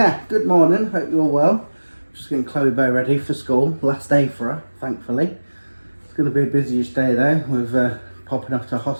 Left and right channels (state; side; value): inverted; both; correlation -1.00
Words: good morning, hope you're all well. Just getting Chloe Bow ready for school, last day for her, thankfully. It's going to be a busyish day though, with popping off to